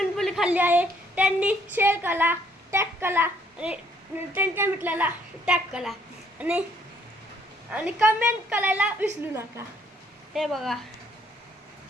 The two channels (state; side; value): normal; both; correlation 0.66